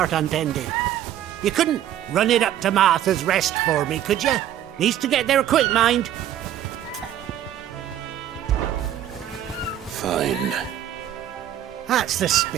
untended. You couldn't run it up to Martha's Rest for me, could you? Needs to get there quick, mind. Fine. That's the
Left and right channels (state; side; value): quieter; left; 11.2 dB